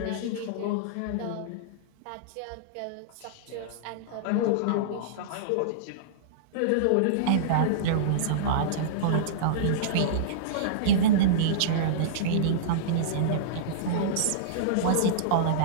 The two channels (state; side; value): different; both; correlation -0.03